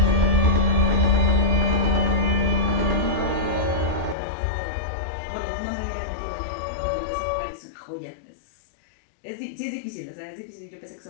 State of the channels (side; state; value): right; drops out; at 4.2 s